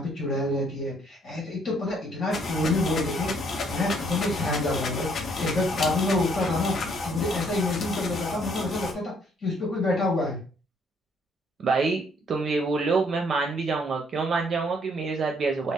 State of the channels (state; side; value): normal; both; correlation 0.66